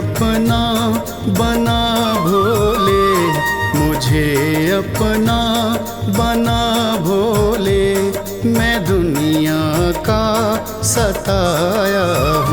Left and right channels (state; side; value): identical; both; correlation 1.00